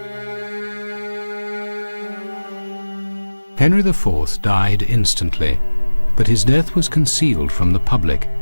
Henry IV died instantly, but his death was concealed from the public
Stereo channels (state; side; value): inverted; both; correlation -1.00